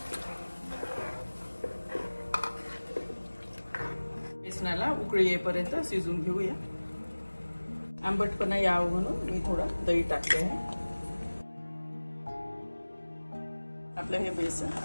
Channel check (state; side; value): inverted; both; correlation -1.00